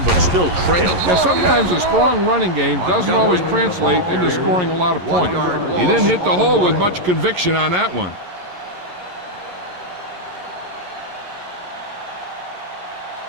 but still trail. Yeah, sometimes a strong running game doesn't always translate into scoring a lot of points. He didn't hit the hole with much conviction on that one.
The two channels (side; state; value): left; late; 11 ms